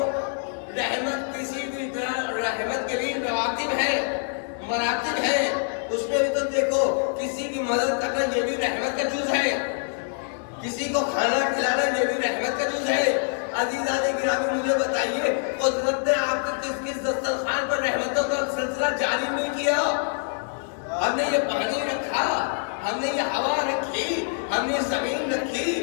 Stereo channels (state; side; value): silent; right; 58 dB below the other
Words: رحمت کسی بھی رحمت کے لیے رواتب ہے, مراتب ہے. اس میں بھی تو دیکھو کسی کی مدد کرنا یہ بھی رحمت کا جز ہے, کسی کو کھانا کھلانا یہ بھی رحمت کا جز ہے. عزیزان گرامی مجھے بتائیے قدرت نے آپ کو کس دسترخوان پر رحمتوں کا سلسلہ جاری نہیں کیا؟ ہم نے یہ پانی رکھا, ہم نے یہ ہوا رکھی, ہم نے زمین رکھی,